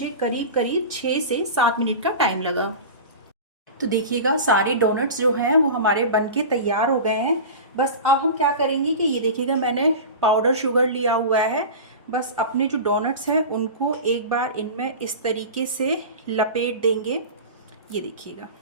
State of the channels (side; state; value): both; inverted; correlation -0.31